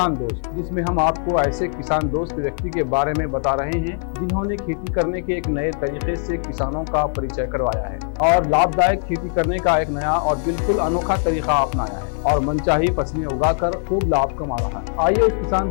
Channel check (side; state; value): right; silent; 62 dB below the other